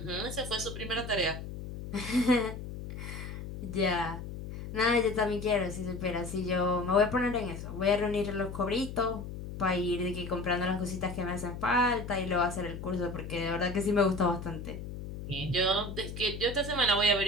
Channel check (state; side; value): noise; left; hum, 9 dB below the sound